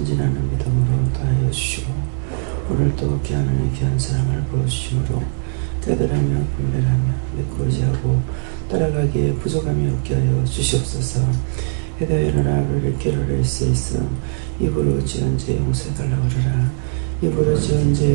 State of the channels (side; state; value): left; silent; 66 dB below the other